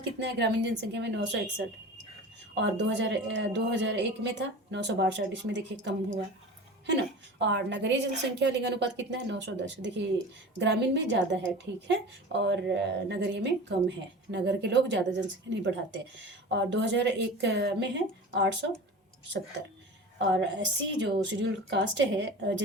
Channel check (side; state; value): both; normal; correlation 0.35